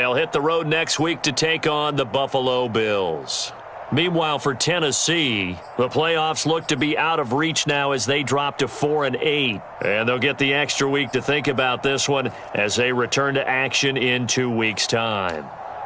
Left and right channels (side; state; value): both; identical; correlation 1.00